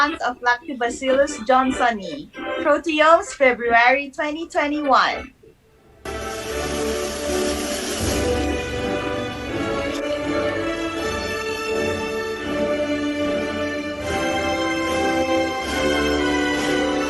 of Lactobacillus johnsoni. Proteomes, February 2021.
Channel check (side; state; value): both; identical; correlation 1.00